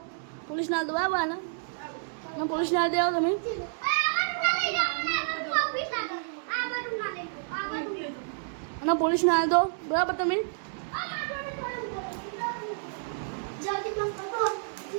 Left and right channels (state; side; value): silent; left; digital silence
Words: બરાબર આને પોલીસ ના દે આવો તમે અને પોલીસ ના દો બરાબર તમે